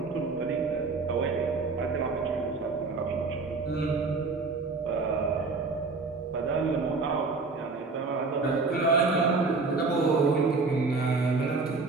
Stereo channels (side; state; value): left; quieter; 4.0 dB